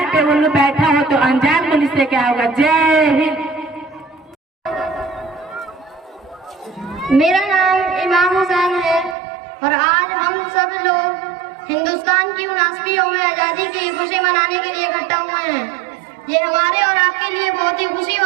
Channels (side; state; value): left; drops out; at 9.2 s